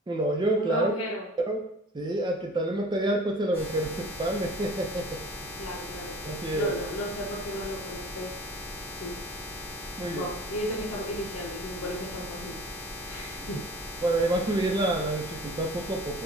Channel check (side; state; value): both; normal; correlation 0.44